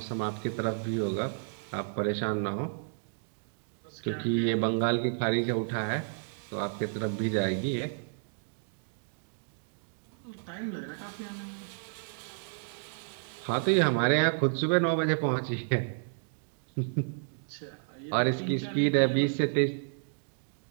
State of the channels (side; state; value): left; silent; digital silence